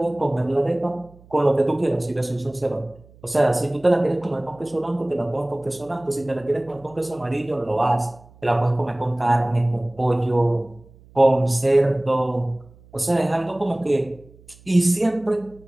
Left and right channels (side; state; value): right; noise; hum, 25 dB below the sound